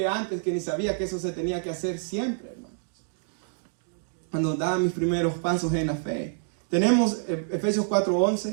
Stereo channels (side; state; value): left; silent; digital silence